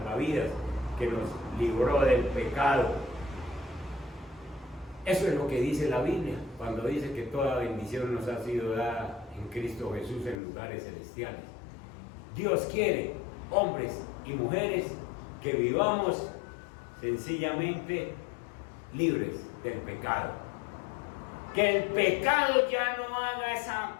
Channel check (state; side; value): drops out; right; at 10.4 s